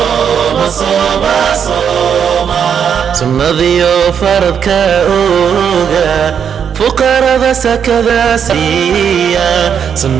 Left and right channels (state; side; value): quieter; left; 7.7 dB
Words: صوم صوم سنذيو فرض كأوغا فقراء سكذا سيا